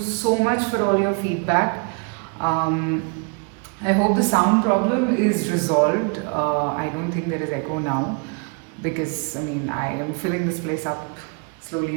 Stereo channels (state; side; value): quieter; left; 35.0 dB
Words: much for all your feedback. Um, I hope the sound problem is resolved. I don't think there is echo now because I am filling this place up